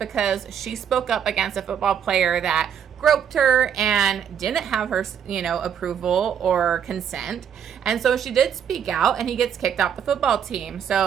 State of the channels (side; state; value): left; quieter; 8.3 dB